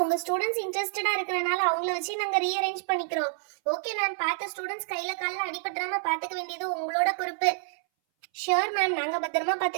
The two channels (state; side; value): silent; left; 59 dB below the other